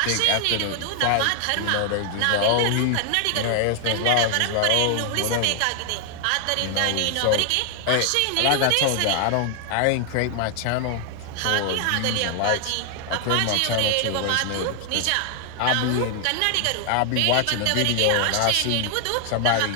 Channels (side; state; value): both; different; correlation 0.00